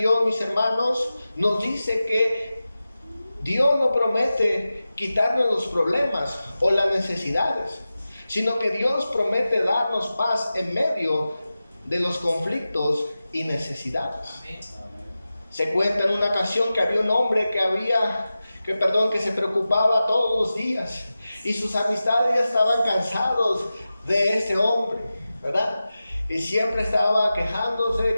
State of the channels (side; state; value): both; inverted; correlation -0.94